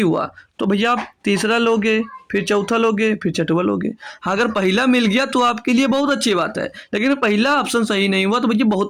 तो भैया आप तीसरा लोगे, फिर चौथा लोगे, फिर छठवा लोगे। हाँ, अगर पहला मिल गया तो आपके लिए बहुत अच्छी बात है, लेकिन पहला ऑप्शन सही नहीं हुआ तो भैया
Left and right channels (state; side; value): identical; both; correlation 1.00